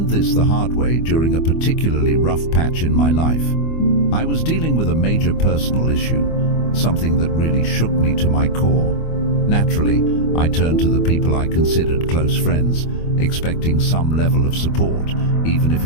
this the hard way during a particularly rough patch in my life. I was dealing with a major personal issue, something that really shook me to my core. Naturally, I turned to the people I considered close friends, expecting some level of support, even if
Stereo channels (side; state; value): right; late; 25 ms